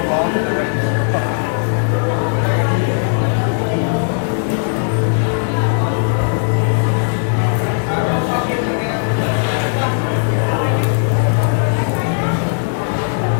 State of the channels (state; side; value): silent; right; digital silence